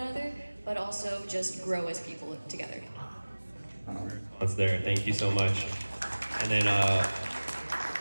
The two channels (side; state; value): both; inverted; correlation -1.00